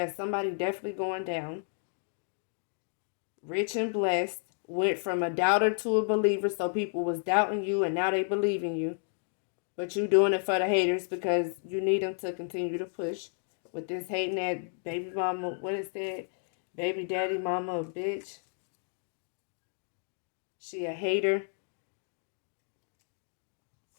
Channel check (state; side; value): silent; right; digital silence